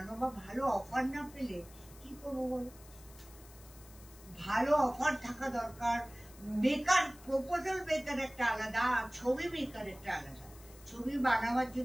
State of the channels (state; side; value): noise; left; hiss, 22 dB below the sound